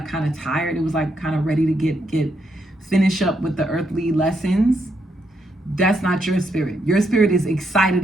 kind of tired. It was like kind of ready to finish up with the earthly lessons. That's not your spirit. Your spirit is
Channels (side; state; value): both; normal; correlation 0.78